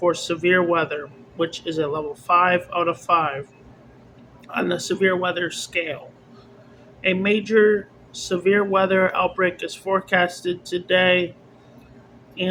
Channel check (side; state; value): both; identical; correlation 1.00